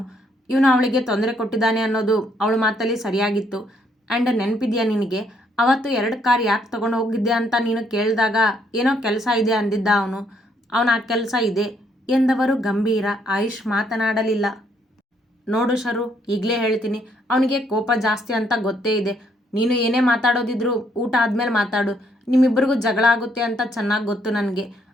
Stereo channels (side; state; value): both; normal; correlation 0.70